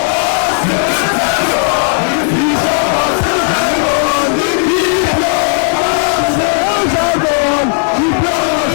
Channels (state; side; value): silent; right; 56 dB below the other